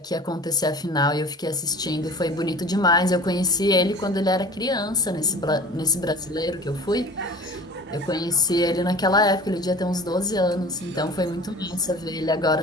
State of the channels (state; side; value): normal; both; correlation 0.42